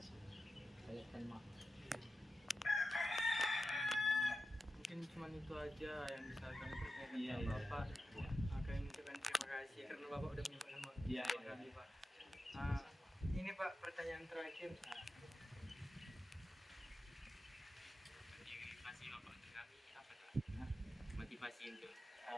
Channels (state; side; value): normal; both; correlation 0.91